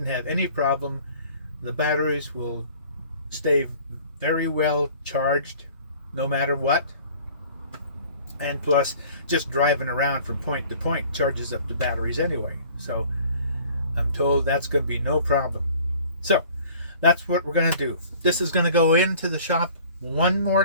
have any problem. The batteries will stay very well charged no matter what. And plus, just driving around from point to point charges up the batteries anyway. So I'm told that's going to be no problem. So that's what we're going to do. This is going to go into the shop one more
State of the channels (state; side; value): inverted; both; correlation -0.50